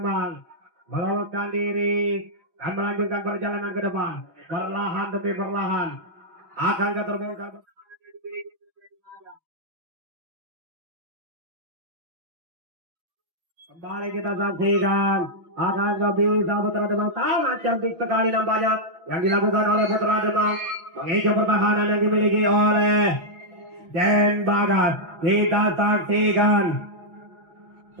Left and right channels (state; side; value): late; left; 6.1 ms